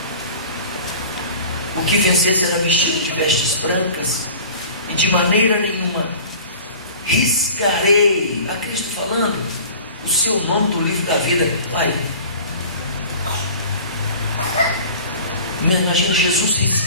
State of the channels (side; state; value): both; inverted; correlation -0.42